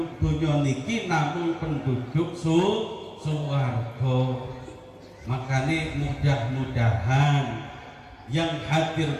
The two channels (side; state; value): both; identical; correlation 1.00